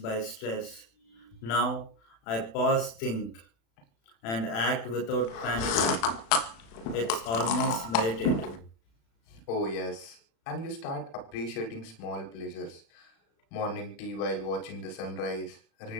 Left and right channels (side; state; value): right; late; 36 ms